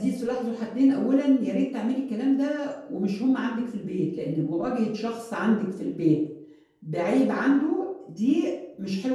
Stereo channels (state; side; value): identical; both; correlation 1.00